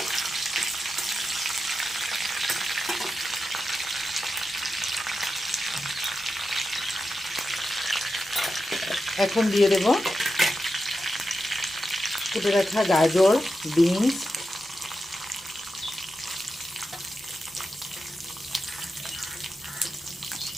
এখন দিয়ে দেব কেটে রাখা গাজর, বিনস,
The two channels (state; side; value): normal; both; correlation 0.90